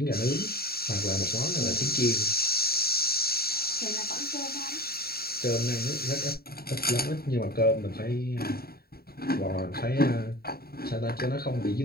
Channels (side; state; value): right; late; 0.45 ms